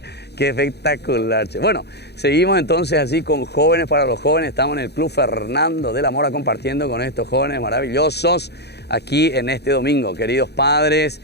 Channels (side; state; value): right; late; 0.48 ms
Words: Qué espectacular, che. Bueno, seguimos entonces así con Jóvenes para los Jóvenes. Estamos en el Club Fernando de la Mora compartiendo con estos jóvenes maravillosos aquí en este domingo. Queridos padres,